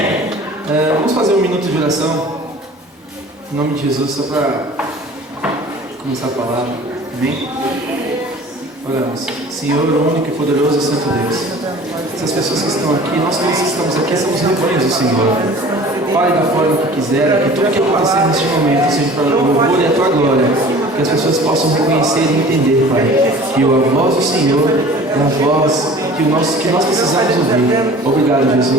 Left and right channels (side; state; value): both; normal; correlation 0.45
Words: Vamos fazer um minuto de oração. Em nome de Jesus, só para começar a palavra. Amém? Oramos. Senhor, o único e poderoso e santo Deus. Essas pessoas que estão aqui, nós todos que estamos aqui, somos rebanhos do Senhor. Fale da forma que quiser, que tudo que acontecer neste momento seja para o louvor e a tua glória. Que as pessoas possam reconhecer e entender, Pai, que a voz do Senhor é a voz que nós precisamos ouvir. Obrigado,